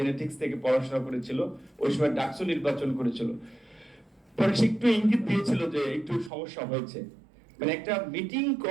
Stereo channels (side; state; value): left; drops out; at 6.3 s